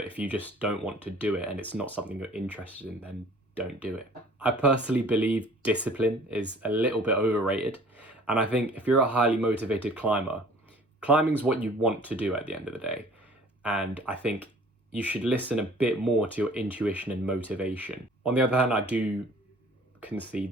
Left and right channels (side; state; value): both; normal; correlation 0.50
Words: if you just don't want to do it and it's not something you're interested in, then don't do it. I personally believe discipline is a little bit overrated, and I think if you're a highly motivated climber, climbing's what you want to do at the end of the day, and I think you should listen a bit more to your intuition and motivation. On the other hand, I do